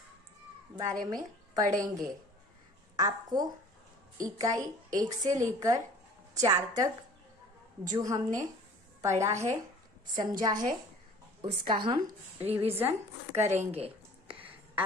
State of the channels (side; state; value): both; normal; correlation 0.48